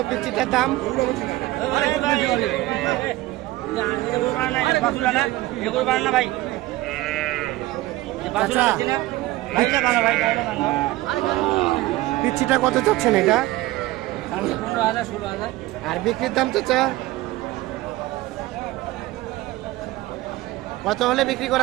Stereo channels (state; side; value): quieter; left; 18.1 dB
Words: পিচিটার দাম? পিচিটা কত চাচ্ছেন এটা? 15,000-16,000। আর বিক্রির দাম চাচা কত হলে বিক্রি